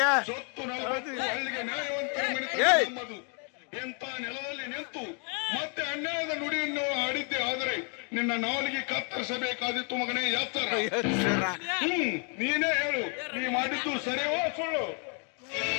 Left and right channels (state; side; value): quieter; right; 38.5 dB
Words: ಸೊತ್ತು ನಲವತ್ತು ಹಳ್ಳಿಗೆ ನ್ಯಾಯವಂತರ ಮನೆತನ ನಮ್ಮದು. ಎಂತ ನೆಲದಲ್ಲಿ ನಿಂತು ಮತ್ತೆ ಅನ್ಯಾಯದ ನುಡಿಯನ್ನು ಆಡಿದ್ದೆ ಆದರೆ ನಿನ್ನ ನಾಲಿಗೆ ಕತ್ತರಿಸಬೇಕಾದಿತ್ತು ಮಗನೇ ಎತ್ತರ. ನೀನೇ ಹೇಳು, ನೀ ಮಾಡಿದ್ದು ಸರಿಯೋ ಸುಳ್ಳು?